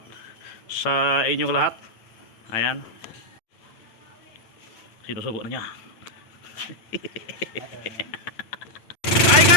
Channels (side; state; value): right; late; 9.0 ms